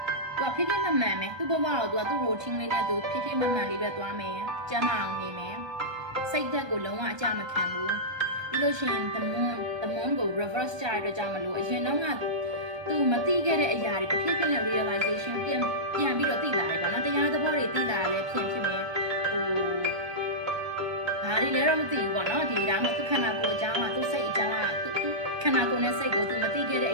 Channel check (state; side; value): late; left; 1.2 ms